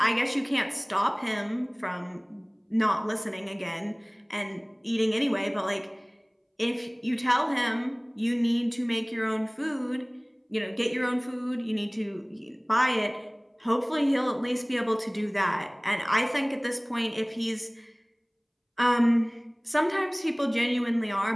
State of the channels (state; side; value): identical; both; correlation 1.00